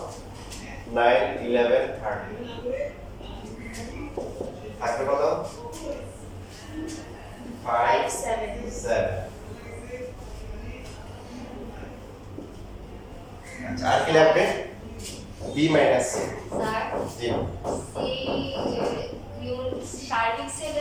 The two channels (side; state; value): both; identical; correlation 1.00